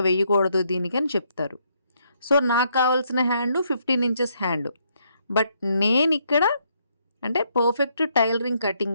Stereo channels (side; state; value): both; inverted; correlation -0.73